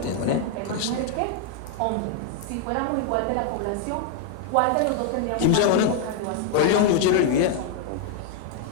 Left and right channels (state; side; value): different; both; correlation 0.00